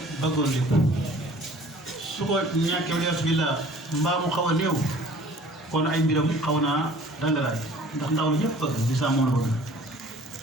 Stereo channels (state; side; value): normal; both; correlation 0.50